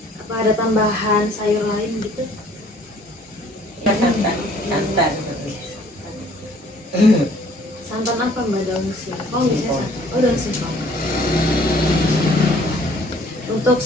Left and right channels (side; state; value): both; normal; correlation 0.57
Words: Apa ada tambahan sayur lain gitu? Ya, santan. Santan apa mbak, daun singkong biasanya santan? Oh daun singkong. Untuk